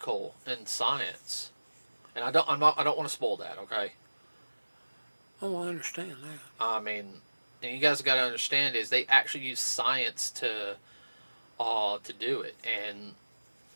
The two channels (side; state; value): both; inverted; correlation -1.00